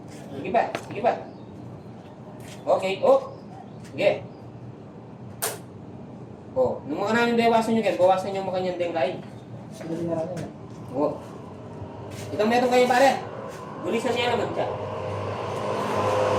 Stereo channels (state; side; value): identical; both; correlation 1.00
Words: Sige pa. Okay, Sige. Nung mga namin bawasan nyo kayo, bawasan nyo mga kanyang denglain. Itong meron kayo pare. Bulisan niya naman siya.